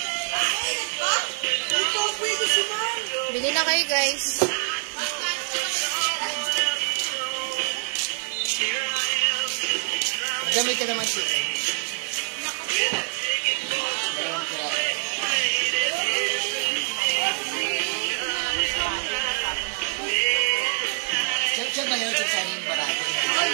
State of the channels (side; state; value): left; silent; digital silence